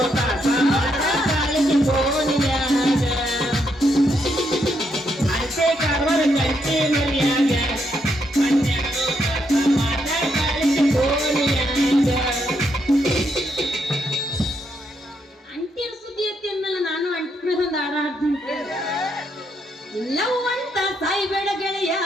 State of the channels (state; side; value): normal; both; correlation 0.77